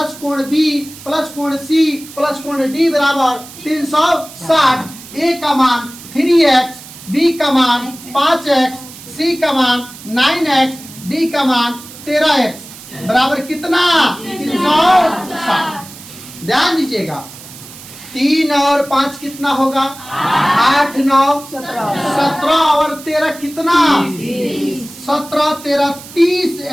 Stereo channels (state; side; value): noise; right; hiss, 17 dB below the sound